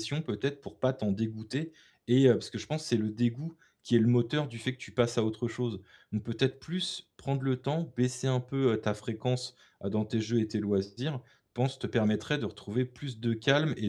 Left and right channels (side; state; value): both; identical; correlation 1.00